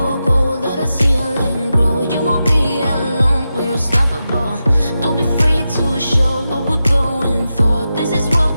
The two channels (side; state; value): both; inverted; correlation -0.90